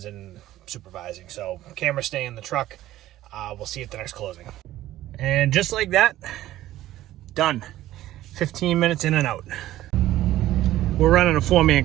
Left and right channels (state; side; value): quieter; left; 14.5 dB